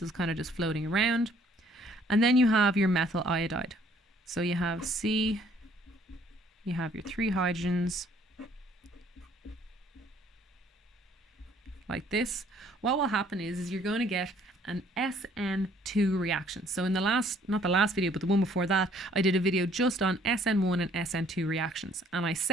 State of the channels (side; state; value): both; normal; correlation 0.61